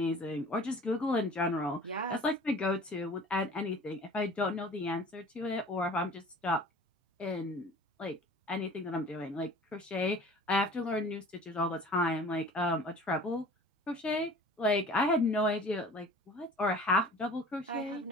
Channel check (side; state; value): both; normal; correlation 0.45